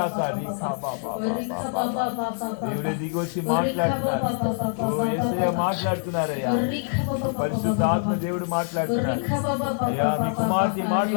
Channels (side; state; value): right; silent; digital silence